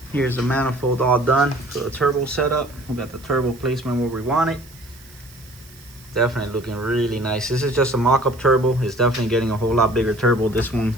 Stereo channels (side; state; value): right; noise; hiss, 23 dB below the sound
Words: Here's the manifold all done for the turbo setup. We got the turbo placement where we want it. Definitely looking really nice. This is just a mock-up turbo. It's definitely getting a whole lot bigger turbo. This one